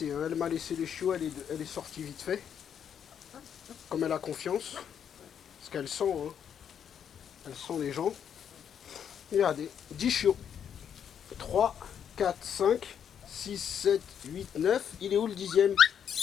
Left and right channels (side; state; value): right; quieter; 8.4 dB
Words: elle m'a laissé les chiots, elle est sortie vite fait. Comme elle a confiance. Parce qu'elle sent, elle sent les gens. Regardez, 10 chiots. 3, 4, 5, 6, 7, 8, 9. Il est où le 10e?